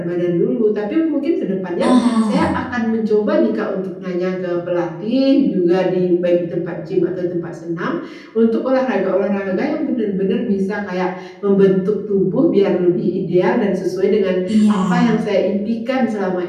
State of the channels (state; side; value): identical; both; correlation 1.00